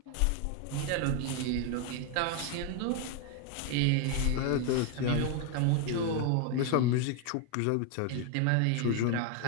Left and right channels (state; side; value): different; both; correlation 0.01